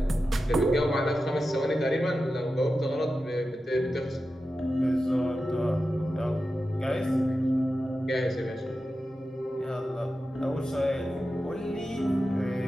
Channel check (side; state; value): both; normal; correlation 0.92